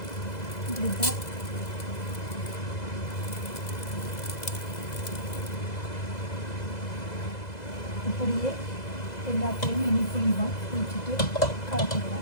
இப்படிதான் இப்படியே எல்லாத்தையும் இனி புளிவோம். புளிச்சுட்டு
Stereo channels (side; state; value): right; late; 2.0 ms